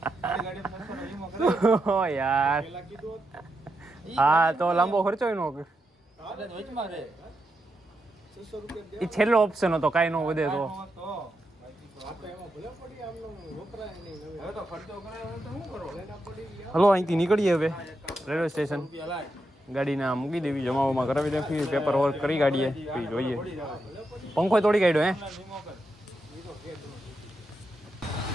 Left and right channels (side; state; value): both; normal; correlation 0.85